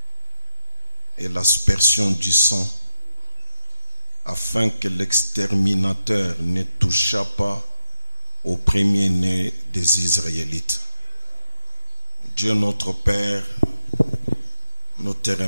et l'aspersion du sang, afin que l'exterminateur ne touchât pas au premier-né des Israélites. Dieu notre Père, nous te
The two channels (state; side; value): inverted; both; correlation -0.88